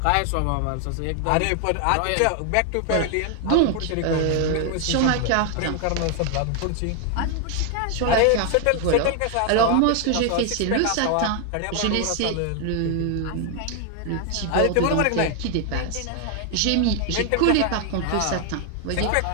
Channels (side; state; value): both; different; correlation 0.00